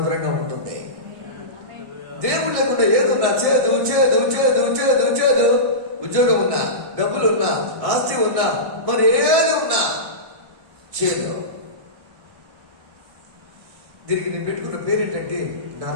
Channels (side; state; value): left; late; 1.6 ms